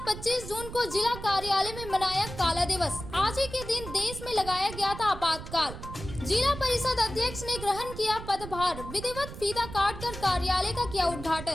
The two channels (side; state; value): right; noise; rumble, 11 dB below the sound